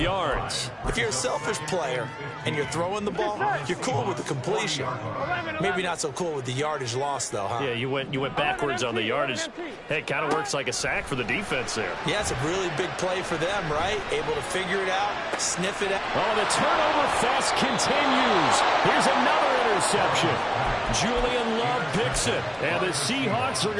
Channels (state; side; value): identical; both; correlation 1.00